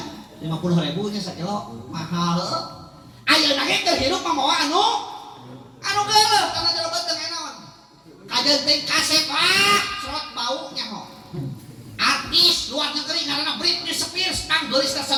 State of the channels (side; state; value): both; identical; correlation 1.00